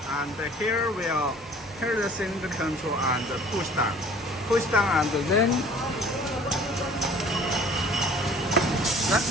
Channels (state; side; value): normal; both; correlation 0.50